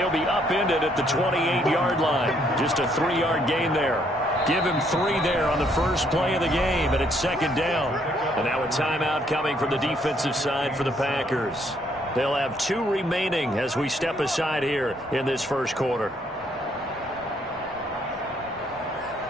be upended at the 28-yard line. Just a 3-yard gain there. Give him 3 there on the first play of the game, and it's second down. And now a timeout coming from the defensive side for the Packers. They'll have 2 remaining as we step aside here in this first quarter.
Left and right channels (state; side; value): normal; both; correlation 0.69